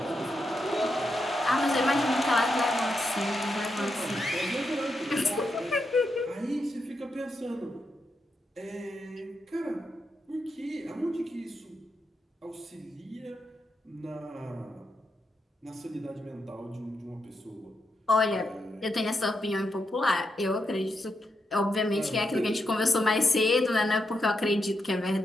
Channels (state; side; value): normal; both; correlation 0.84